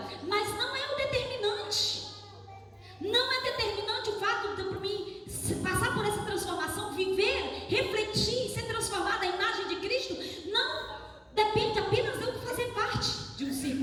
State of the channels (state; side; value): identical; both; correlation 1.00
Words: mas não é o determinante. Não é determinante o fato de mim passar por essa transformação, viver, refletir, ser transformada à imagem de Cristo. Não depende apenas de eu fazer parte de um